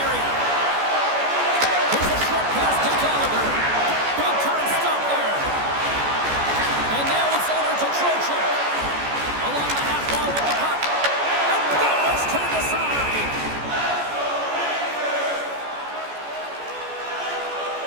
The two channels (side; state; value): left; late; 14 ms